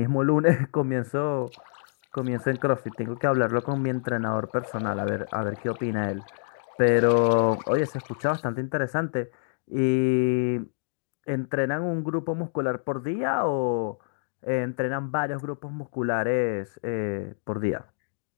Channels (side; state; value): right; silent; digital silence